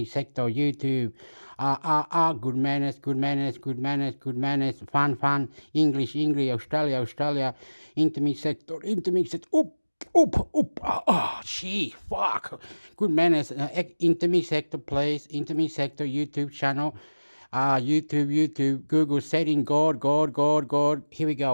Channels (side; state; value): both; inverted; correlation -1.00